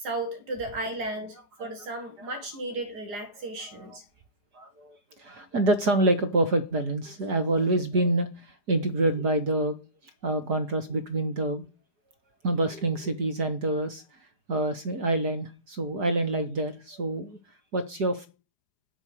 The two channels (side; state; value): left; late; 4.9 ms